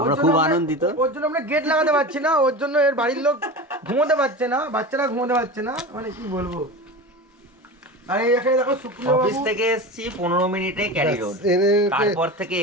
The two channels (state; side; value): normal; both; correlation 0.29